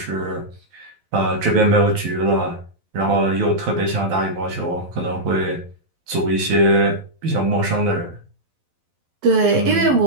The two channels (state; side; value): late; left; 12 ms